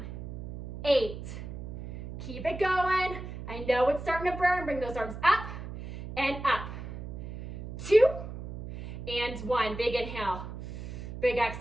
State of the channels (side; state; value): right; noise; hum, 9 dB below the sound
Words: 8. Keep it going. I know it's starting to burn. Bring those arms up and up. 2 and 1. Big inhale. Big